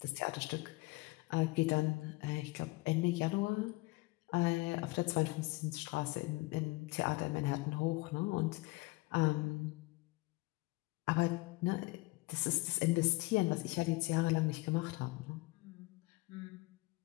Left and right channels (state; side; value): quieter; right; 23.2 dB